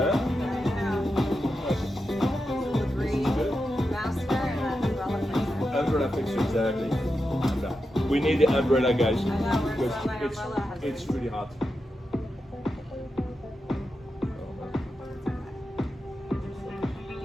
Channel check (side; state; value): both; normal; correlation 0.88